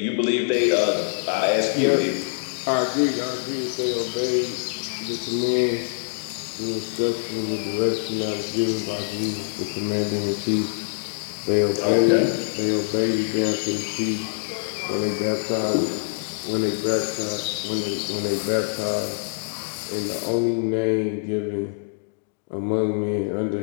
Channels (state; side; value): silent; right; digital silence